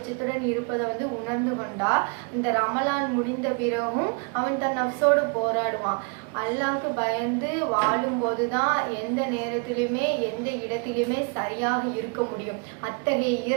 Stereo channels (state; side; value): quieter; left; 34.9 dB